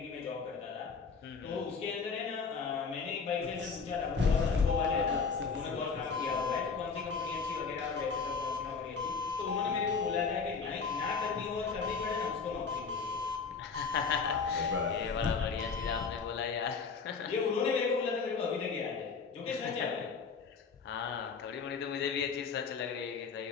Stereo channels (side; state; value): right; quieter; 5.3 dB